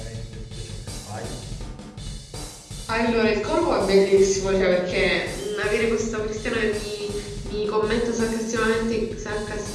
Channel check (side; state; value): both; identical; correlation 1.00